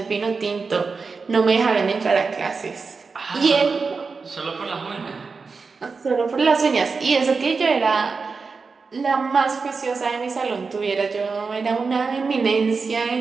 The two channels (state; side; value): quieter; left; 4.7 dB